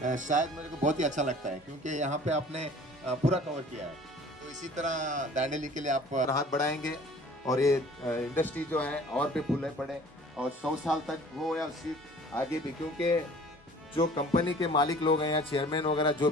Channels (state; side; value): normal; both; correlation 0.49